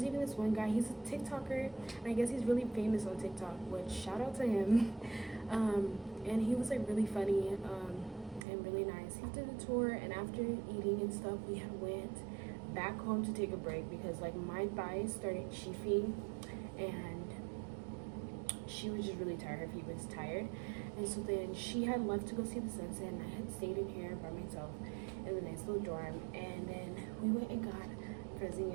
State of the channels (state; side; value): drops out; left; at 8.5 s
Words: even this one guy, he's a TikToker, and I guess he's really famous on TikTok, which shout out to him. And he was like really funny and really nice. He did a tour, and after eating and stuff, we had went back home to take a break because like my thighs started chafing, and she was just really tired. Her feet was tired, and so then she had left to go see the sunset, and I had stayed in here by myself in the nice little dorm. And then we went and got frozen